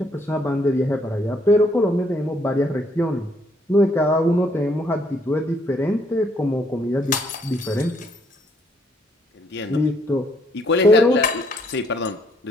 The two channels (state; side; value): normal; both; correlation 0.68